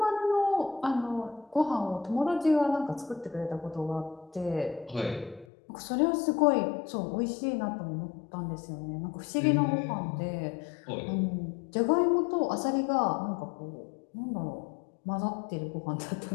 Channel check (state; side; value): drops out; right; at 5.5 s